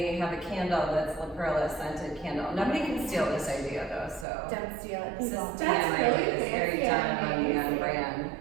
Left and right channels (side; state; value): left; drops out; at 4.2 s